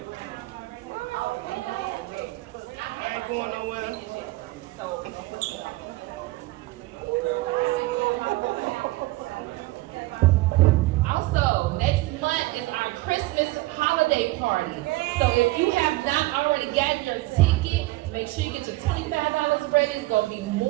I ain't going nowhere. So So if you have not already gotten your ticket, make sure you get your $25 ready. It's gonna be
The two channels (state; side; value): quieter; left; 20.1 dB